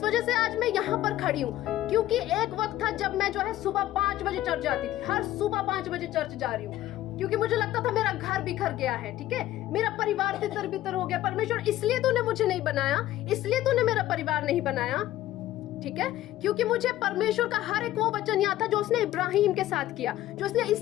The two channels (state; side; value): quieter; right; 14.2 dB